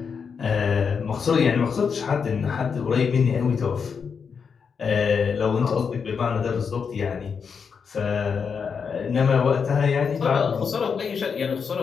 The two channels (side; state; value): right; quieter; 6.1 dB